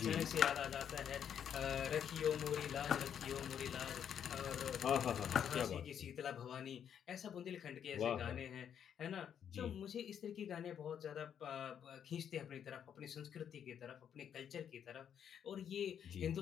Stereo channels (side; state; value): right; quieter; 8.7 dB